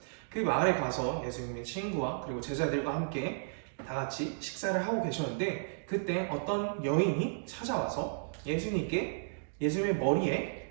그 마을에 가서 예수님의 친구와 그리고 제자들과 함께 다 같이 식사를 하고 계셨는데 그때 어떤 여인이 찾아와서 예수님의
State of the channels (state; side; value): silent; left; digital silence